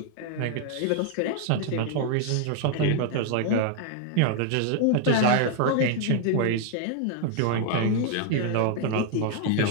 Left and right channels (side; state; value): both; different; correlation 0.00